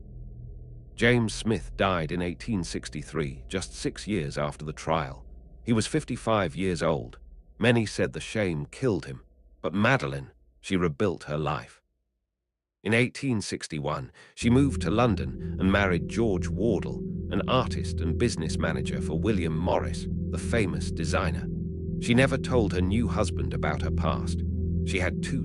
James Smith died in 1863, just 6 years after the trial. He was 55 years old. Many said the shame killed him, but Madeleine, she rebuilt her life. In 1861, she moved to London and married George Wardle, an artist and business manager for William Morris, the famous designer. She never told her new husband about her past. She had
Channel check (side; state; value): both; identical; correlation 1.00